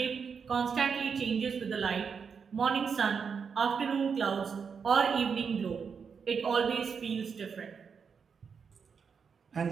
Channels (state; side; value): quieter; left; 6.2 dB